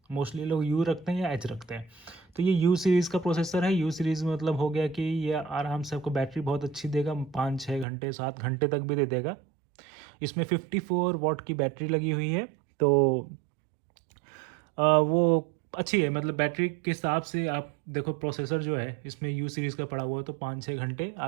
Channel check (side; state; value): left; drops out; at 7.9 s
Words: मोस्टली लोग यू रखते हैं या एच रखते हैं। तो ये यू सीरीज़ का प्रोसेसर है। यू सीरीज़ मतलब हो गया कि ये आराम से आपको बैटरी बहुत अच्छी देगा, 5-6 घंटे 7 घंटे तक भी दे देगा। इसमें 54 वॉट की बैटरी लगी हुई है, तो वो अच्छी है, मतलब बैटरी के हिसाब से आप देखो। प्रोसेसर जो है इसमें यू सीरीज़ का पड़ा हुआ है तो 5-6 घंटे